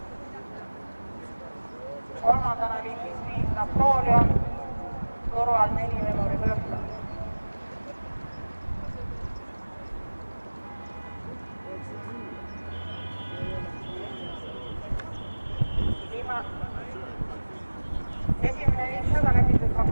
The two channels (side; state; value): both; inverted; correlation -1.00